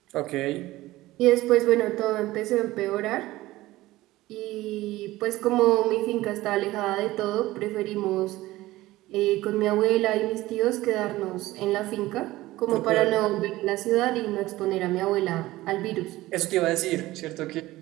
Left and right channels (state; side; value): quieter; left; 17.5 dB